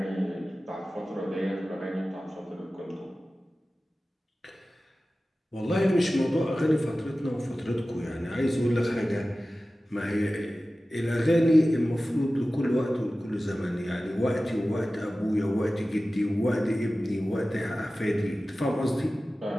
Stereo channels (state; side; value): normal; both; correlation 0.96